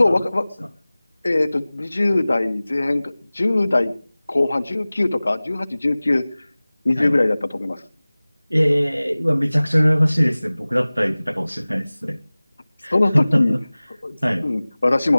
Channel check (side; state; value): both; inverted; correlation -0.99